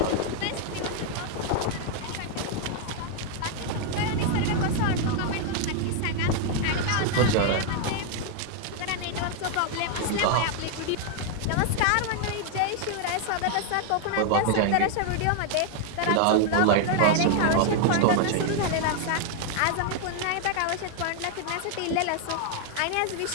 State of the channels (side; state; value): both; different; correlation 0.00